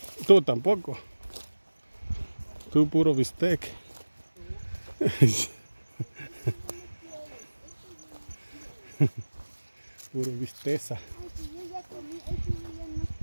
Tú tampoco. Tú puro bistec. Puro bisteza. Ay, si yo ya comí, ese yo ya no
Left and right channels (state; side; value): inverted; both; correlation -1.00